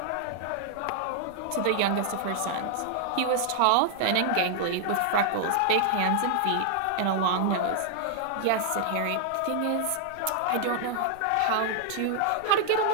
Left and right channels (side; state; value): both; different; correlation 0.00